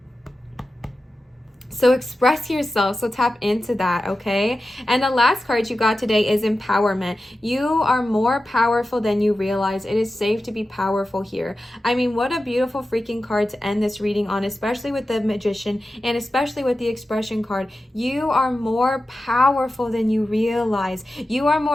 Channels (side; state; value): both; normal; correlation 0.93